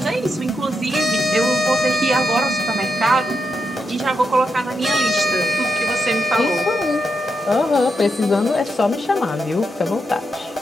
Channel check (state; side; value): normal; both; correlation 0.84